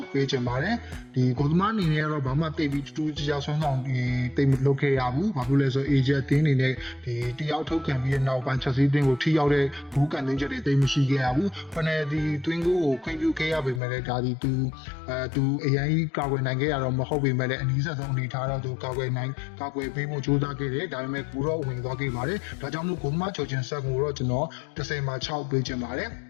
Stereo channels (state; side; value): drops out; right; at 13.8 s